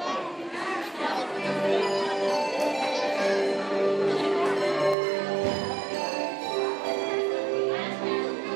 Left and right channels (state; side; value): drops out; left; at 5.0 s